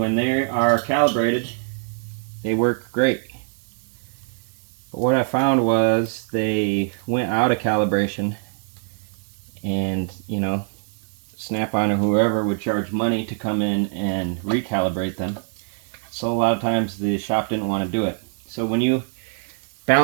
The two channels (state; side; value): silent; left; 63 dB below the other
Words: they are calibrated, they work great. But what I found was they went out of calibration and, you know, Snap-on or whoever would charge money to come in and recalibrate them. So a lot of times the shop didn't want to do it. So when you